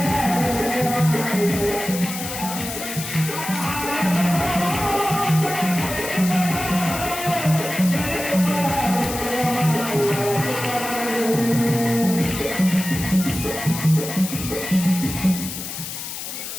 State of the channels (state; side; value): noise; left; hiss, 7 dB below the sound